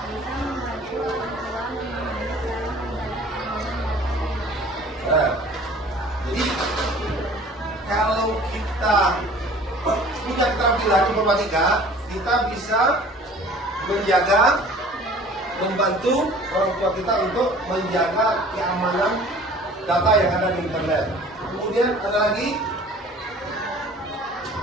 jadi kalau kita punya keterampilan informatika, kita bisa menjaga, membantu orang tua kita untuk menjaga keamanan data yang ada di internet. Kemudian ada lagi,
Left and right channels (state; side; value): normal; both; correlation 0.48